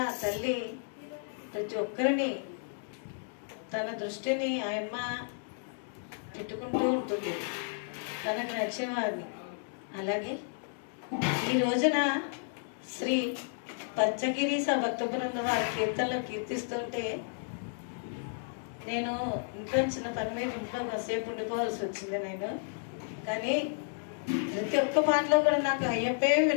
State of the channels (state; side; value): silent; right; digital silence